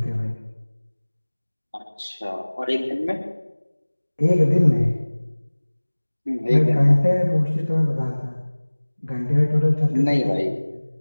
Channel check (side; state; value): both; inverted; correlation -1.00